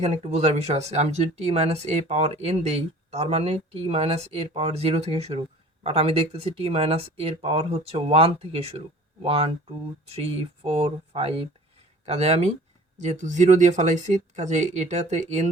একটু বোঝার বিষয় আছে, আমি যদি টি মাইনাস এ পাওয়ার এন দেই, তার মানে টি মাইনাস এর পাওয়ার 0 থেকে শুরু, বাট আমি দেখতেছি টি মাইনাস এর পাওয়ার হচ্ছে 1 থেকে শুরু, 1 2 3 4 5। কাজে আমি যেহেতু 0 দিয়ে ফেলাইছি, কাজে এটাতে এন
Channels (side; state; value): both; normal; correlation 0.47